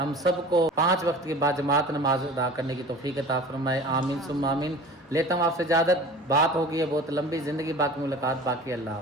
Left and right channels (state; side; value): normal; both; correlation 0.40